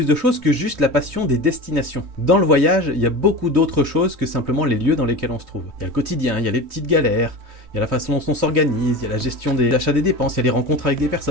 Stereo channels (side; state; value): left; late; 3.2 ms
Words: de choses que juste la passion des destinations. Dans le voyage il y a beaucoup d'autres choses que simplement les lieux dans lesquels on se trouve. Il y a le quotidien, il y a les petites galères, il y a la façon dont on s'organise, il y a la gestion des achats des dépenses, il y a les rencontres avec des